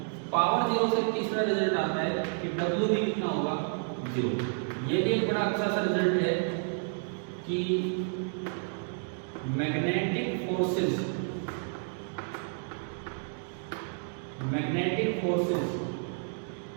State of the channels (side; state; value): left; silent; 57 dB below the other